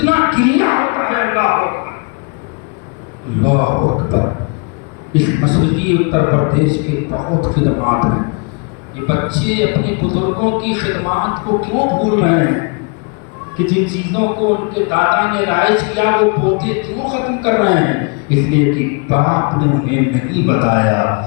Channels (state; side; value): quieter; right; 34.4 dB